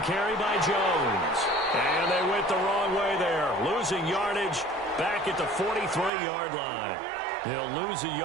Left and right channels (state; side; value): drops out; left; at 6.1 s